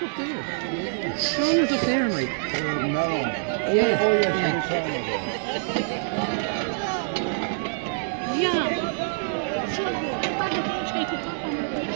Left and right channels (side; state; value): left; silent; 61 dB below the other